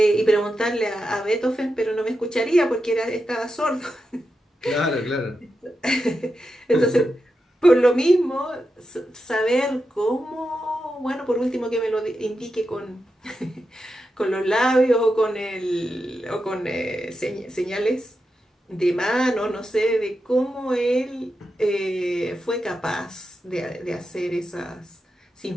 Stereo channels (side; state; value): both; normal; correlation 0.88